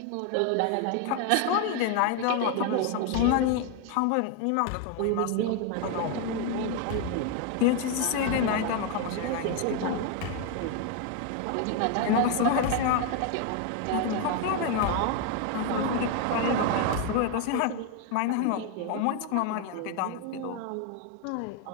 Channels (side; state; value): both; different; correlation 0.01